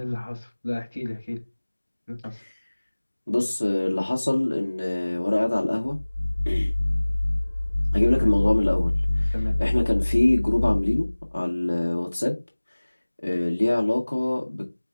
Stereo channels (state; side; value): inverted; both; correlation -1.00